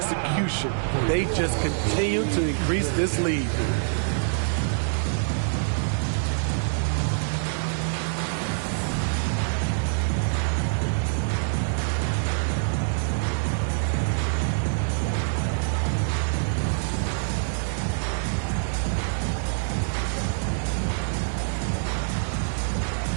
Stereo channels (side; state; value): left; silent; digital silence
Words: They just continue to increase this lead.